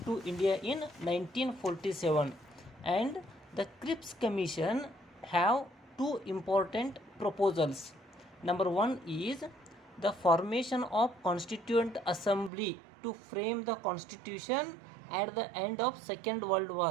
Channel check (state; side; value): drops out; left; at 12.5 s